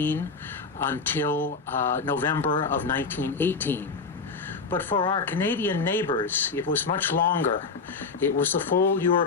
until November of 1918. But for our Canadian neighbors, it was much longer. It was the full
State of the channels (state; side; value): quieter; right; 4.7 dB